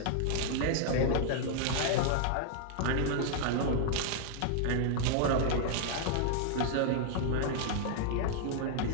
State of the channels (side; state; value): both; different; correlation -0.01